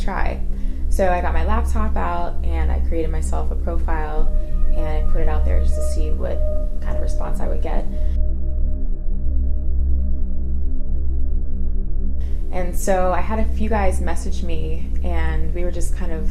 try. So I got my laptop out and I created myself a profile and I put it out there just to see what kind of response I would get. And so I had a few guys message me and we were just kind of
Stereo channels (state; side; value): identical; both; correlation 1.00